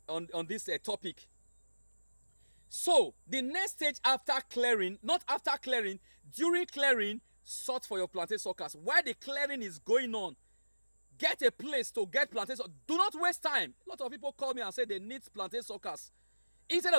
topic. So the next stage after clearing, not after clearing, during clearing, sort for your plantain suckers. While the clearing is going on, get a place to get plantain suckers. Do not waste time. A lot of people call me and say they need plantain suckers. Instead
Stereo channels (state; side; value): inverted; both; correlation -1.00